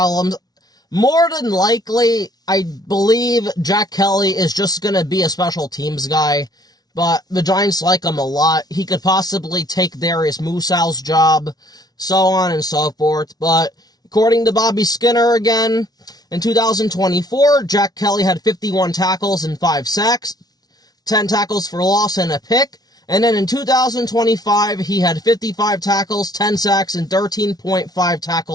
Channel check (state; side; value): late; right; 0.19 ms